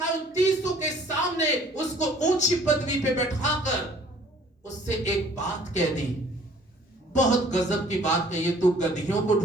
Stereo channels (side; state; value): both; normal; correlation 0.55